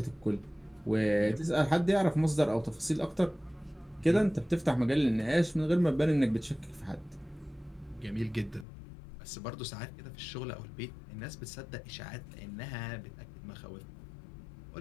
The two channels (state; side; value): drops out; right; at 8.7 s